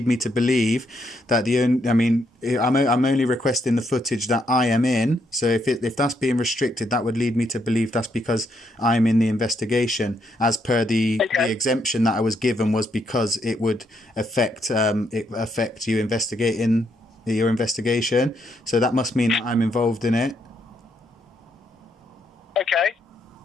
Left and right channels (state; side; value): normal; both; correlation 0.76